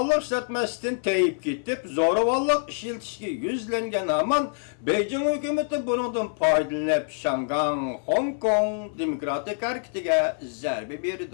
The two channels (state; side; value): silent; right; 61 dB below the other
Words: ishlatmasdan tayib ketib, zo'ravonlik ishlatishga yuzlangan hamon Beijing hukumati bundan foydalanib Şangang, Hong Kong demokratik harakatiga zarba